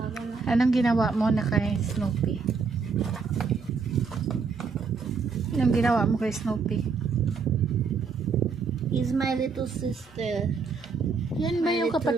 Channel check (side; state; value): left; quieter; 5.0 dB